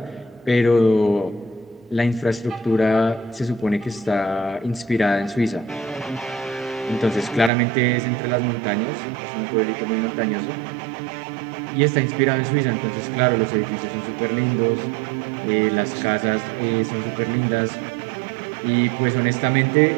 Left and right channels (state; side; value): drops out; left; at 7.5 s